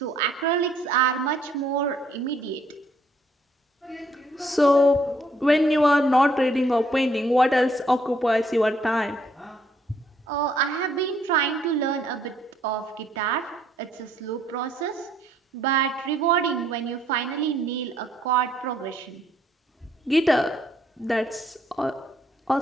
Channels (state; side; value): normal; both; correlation 0.67